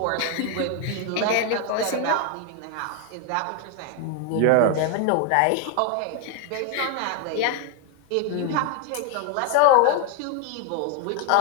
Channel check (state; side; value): different; both; correlation 0.01